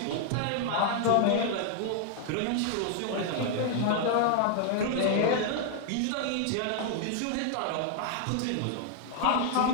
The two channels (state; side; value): different; both; correlation 0.00